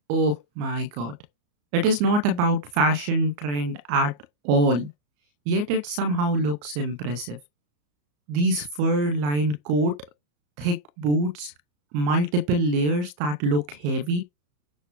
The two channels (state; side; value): late; left; 34 ms